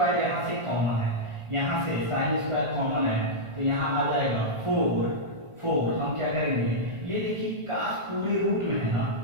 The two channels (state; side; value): late; left; 1.4 ms